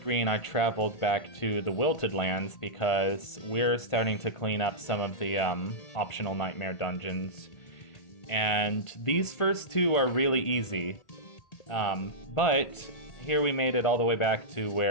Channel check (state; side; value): late; right; 1.5 ms